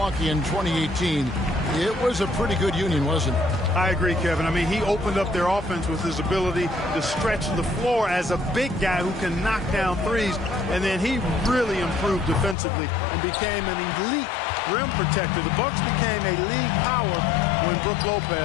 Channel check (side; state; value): right; drops out; at 12.6 s